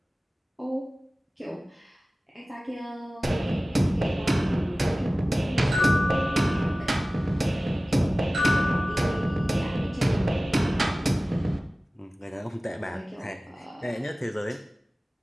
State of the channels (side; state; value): both; normal; correlation 0.97